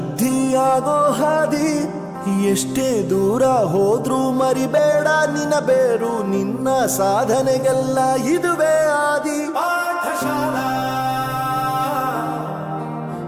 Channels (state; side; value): identical; both; correlation 1.00